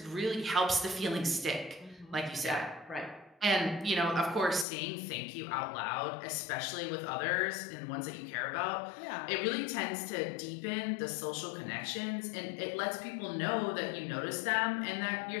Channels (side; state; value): right; drops out; at 4.7 s